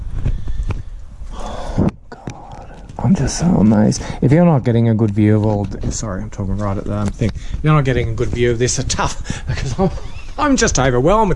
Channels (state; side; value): identical; both; correlation 1.00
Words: Oh God, I'm just so amazed. If you're not getting a good view of all, sorry, I'm talking right at the thing. If you're not getting a good view of this, it's tough because I'm just overwhelmed